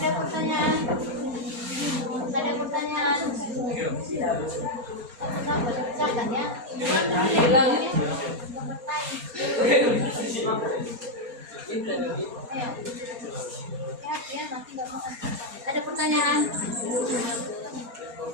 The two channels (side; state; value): left; late; 4.3 ms